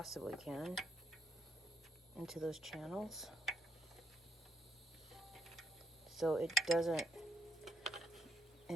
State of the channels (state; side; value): normal; both; correlation 0.76